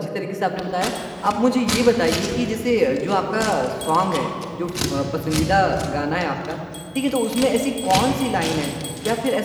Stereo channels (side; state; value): both; identical; correlation 1.00